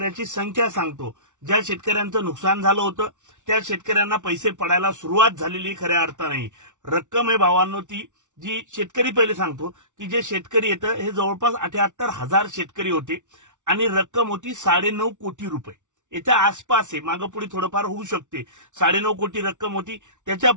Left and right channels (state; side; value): late; left; 0.86 ms